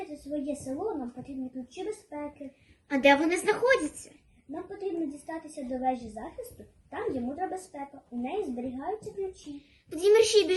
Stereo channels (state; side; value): identical; both; correlation 1.00